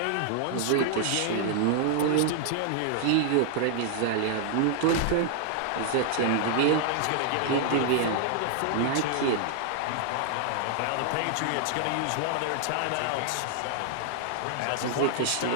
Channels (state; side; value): different; both; correlation 0.00